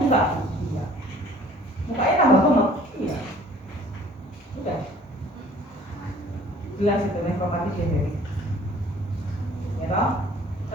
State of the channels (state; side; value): normal; both; correlation 0.53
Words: iya. Mukanya tambah gemuk, iya. Udah, jelas itu nefropati diabetes. Ya toh?